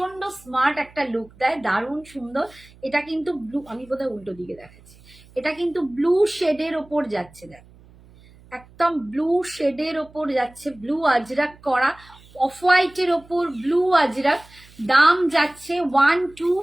স্মার্ট একটা লুক দেয়, দারুণ সুন্দর। এটা কিন্তু ব্লু, আমি বোধহয় উল্টো দিকে দেখাচ্ছি, এটা কিন্তু ব্লু শেডের ওপর যাচ্ছে, দেখো একদম ব্লু শেডের ওপর যাচ্ছে, ব্লু আজরাক করা, অফ হোয়াইটের ওপর ব্লু আজরাক। দাম যাচ্ছে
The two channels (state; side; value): noise; right; hum, 25 dB below the sound